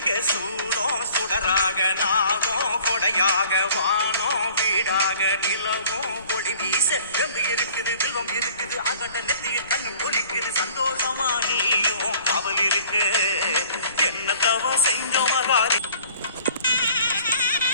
சூடம் சுடராக, நாகம் கொடையாக, வானம் வீடாக, நிலவும் ஒளி வீச வெம்பு இருக்குது, வில்வம் இருக்குது, அகண்ட நெத்திய கண்ணு குளிக்குது, சந்தோஷமா நீயும் காவல் இருக்கு, என்ன தவம் செஞ்சோம் மகாரி.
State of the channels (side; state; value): both; inverted; correlation -0.52